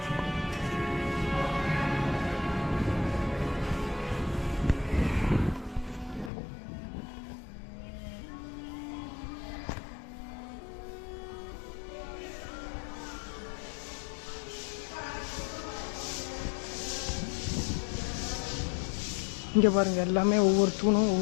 இங்கே பாருங்கள், எல்லாமே ஒவ்வொரு தூணும்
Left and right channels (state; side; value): drops out; right; at 6.3 s